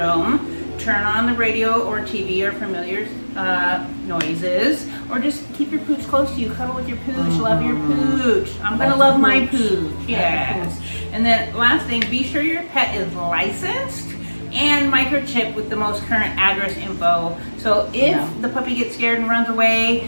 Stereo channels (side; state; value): both; inverted; correlation -1.00